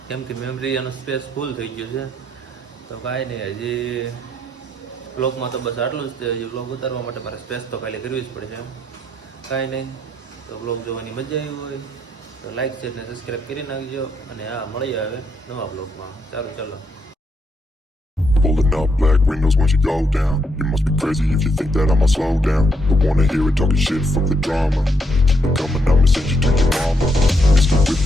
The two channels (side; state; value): both; normal; correlation 0.76